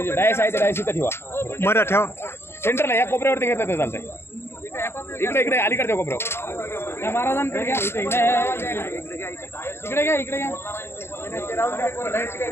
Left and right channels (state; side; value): late; right; 0.12 ms